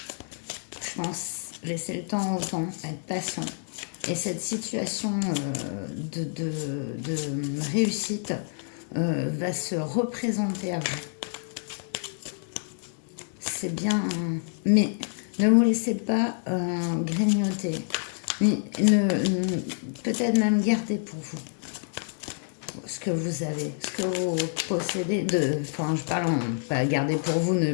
je pense, laisser le temps au temps, être patient. Et cette situation de réussite va se représenter à vous. C'est bien, mais ne vous laissez pas grignoter. Peut-être même garder pour vous ce que vous avez, ce que vous possédez. Enfin, je parle pas garder pour vous, ne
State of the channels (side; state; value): right; silent; digital silence